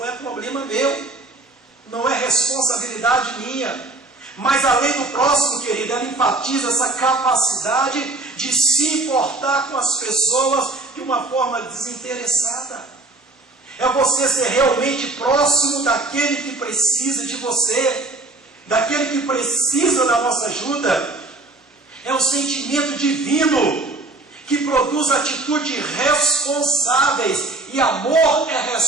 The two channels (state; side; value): quieter; left; 3.1 dB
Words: é problema meu, não é responsabilidade minha. Mas além do próximo, querido, ela enfatiza essa capacidade de se importar com as pessoas de uma forma desinteressada. É você ser realmente próximo daquele que precisa de você, daquele que precisa da nossa ajuda. É um sentimento divino que produz atitudes responsáveis, e amor é